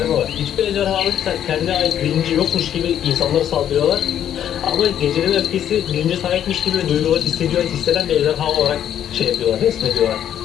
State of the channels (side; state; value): right; quieter; 10.2 dB